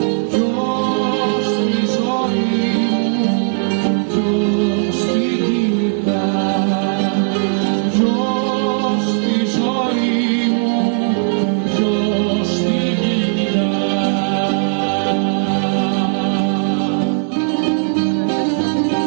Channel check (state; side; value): silent; left; digital silence